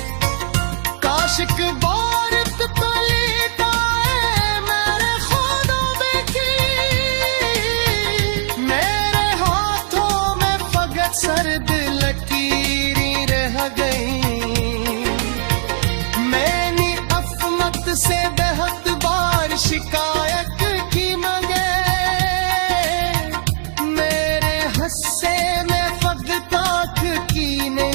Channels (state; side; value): silent; left; digital silence